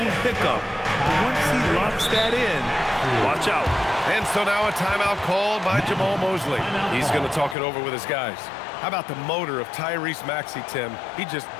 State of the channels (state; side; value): drops out; right; at 7.6 s